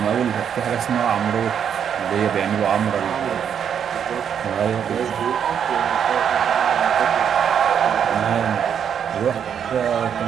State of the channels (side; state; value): left; quieter; 8.2 dB